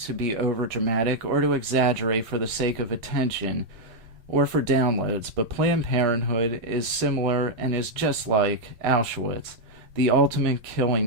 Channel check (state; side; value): late; left; 8.4 ms